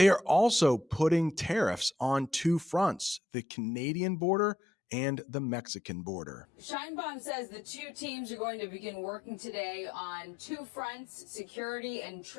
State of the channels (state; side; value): drops out; right; at 3.2 s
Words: are also putting tariffs on two fronts: the Canadian border and the Mexican border. Sheinbaum says the two teams are going to begin working today on two fronts, security and